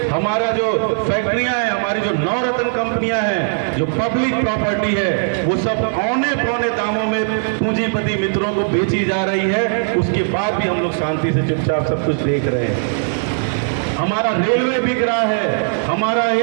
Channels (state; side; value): silent; left; digital silence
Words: हमारा जो फैक्ट्रियां हैं, हमारी जो नवरत्न कंपनियां हैं, जो पब्लिक प्रॉपर्टी है, वो सब औने पौने दामों में पूंजीपति मित्रों को बेची जा रही है। उसके बाद भी हम लोग शांति से चुपचाप सब कुछ देख रहे हैं। हमारा रेलवे बिक रहा है, हमारा